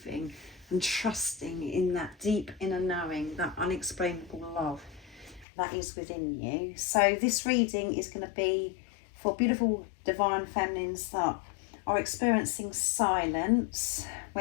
and trusting in that deep inner knowing, that unexplainable love that is within you. So this reading is going to be for beautiful divine feminines that are experiencing silence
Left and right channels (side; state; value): right; drops out; at 5.5 s